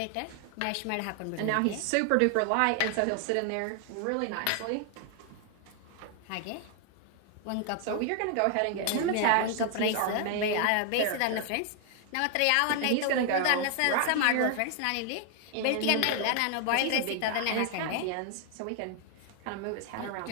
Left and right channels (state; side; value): different; both; correlation 0.00